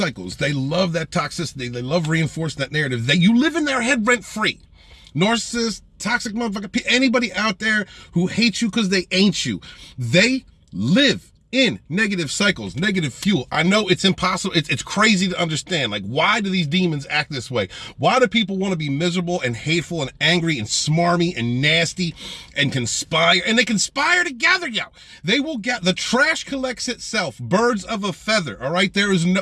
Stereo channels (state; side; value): identical; both; correlation 1.00